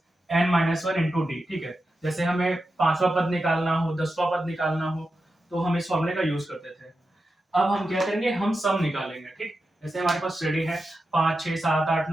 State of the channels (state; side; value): normal; both; correlation 0.90